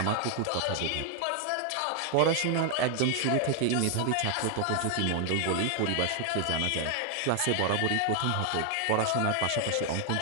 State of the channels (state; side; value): different; both; correlation 0.00